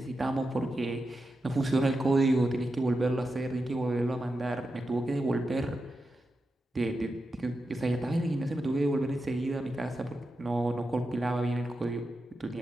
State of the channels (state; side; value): normal; both; correlation 0.89